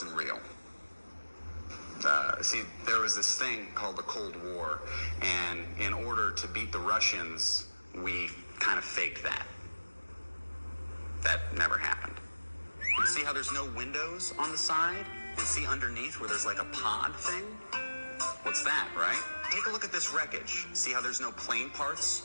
real. See, there was this thing called the Cold War, and in order to beat the Russians, we kind of faked that. That never happened. See how there's no windows on the side? And see underneath where there's like a pod thing? What's that, right? Take a look at this wreckage. See how there's no plane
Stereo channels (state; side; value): inverted; both; correlation -1.00